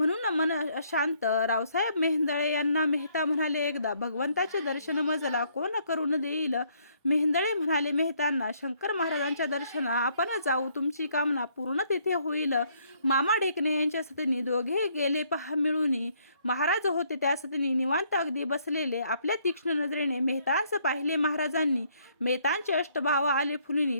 मन अशांत. रावसाहेब मेहेंदळे यांना मेहता म्हणाले एकदा, भगवंताचे दर्शन मजला कोण करून देईल. मेहेंदळे म्हणाले मेहतांना, शंकर महाराजांच्या दर्शना आपण जाऊ, तुमची कामना पूर्ण तिथे होईल. मामा ढेकणे यांच्या सतनी दोघे गेले पहा मिळून. महाराज होते त्या सतनी निवांत अगदी बसलेले. आपल्या तीक्ष्ण नजरेने मेहतांस पाहिले महाराजांनी. मेहतांचे अष्टभाव आले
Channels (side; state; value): both; inverted; correlation -0.68